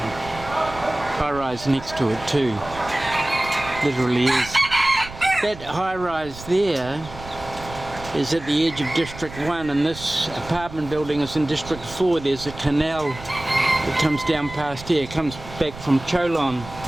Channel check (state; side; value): noise; right; rumble, 15 dB below the sound